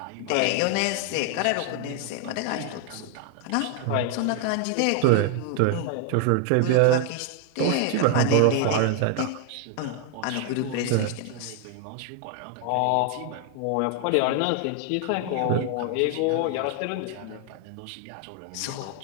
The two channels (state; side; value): different; both; correlation 0.00